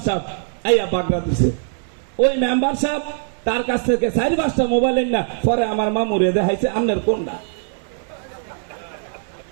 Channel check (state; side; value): silent; left; digital silence